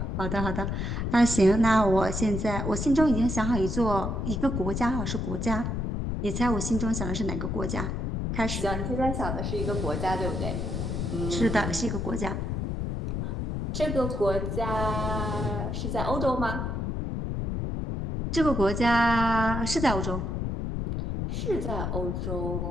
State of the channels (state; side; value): noise; left; rumble, 2 dB below the sound